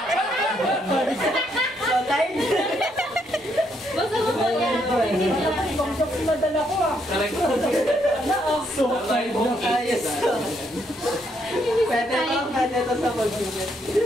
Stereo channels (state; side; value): normal; both; correlation 0.74